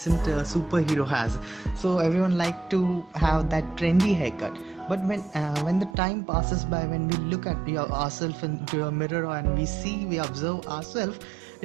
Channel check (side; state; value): left; drops out; at 6.0 s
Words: superhero has. So everyone like to have that trendy haircut. But when the time passes by, when we look at ourselves into a mirror and we observe ourselves,